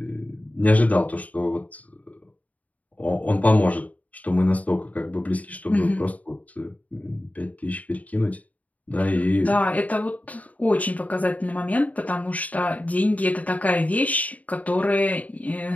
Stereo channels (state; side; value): late; right; 0.072 ms